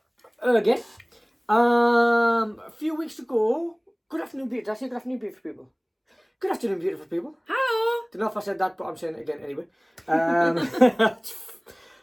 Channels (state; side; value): identical; both; correlation 1.00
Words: again. A few weeks ago. Good afternoon, beautiful. Did I say good afternoon, beautiful people? Good afternoon, beautiful people. Hello. Don't know if I said that, but I'm saying it again anyway.